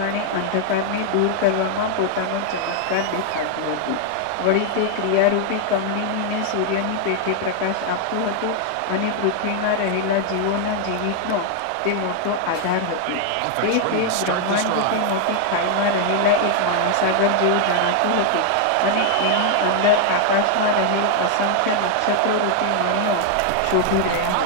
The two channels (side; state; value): both; different; correlation 0.00